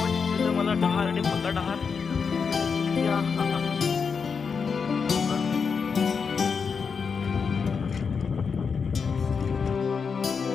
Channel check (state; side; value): quieter; right; 5.7 dB